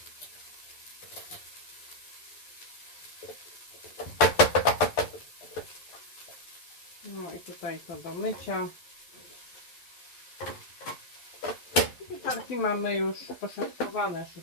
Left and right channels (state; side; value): late; right; 11 ms